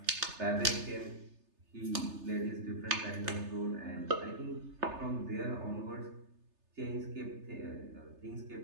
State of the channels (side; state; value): left; late; 3.3 ms